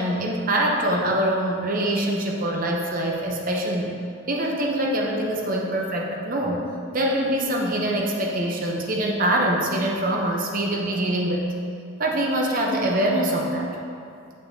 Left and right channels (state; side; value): normal; both; correlation 0.24